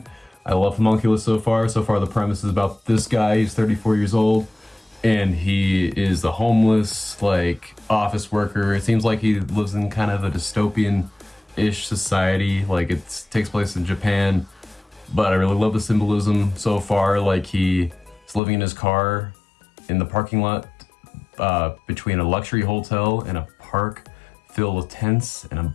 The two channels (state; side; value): drops out; right; at 18.4 s